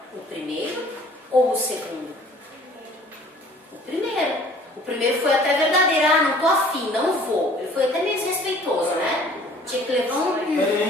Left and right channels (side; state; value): both; normal; correlation 0.52